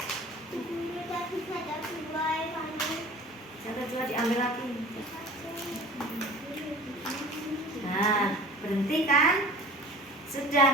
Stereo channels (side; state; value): both; normal; correlation 0.42